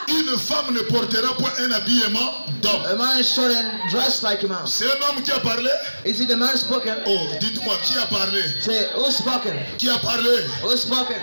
une femme ne portera point un habillement d'homme. a man shouldn't dress like a man. C'est un homme qui a parlé. Is it the man spoken? Oh, dites-moi, qui a parlé? Say, who spoken? Qui a parlé? Who spoken?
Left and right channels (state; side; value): inverted; both; correlation -1.00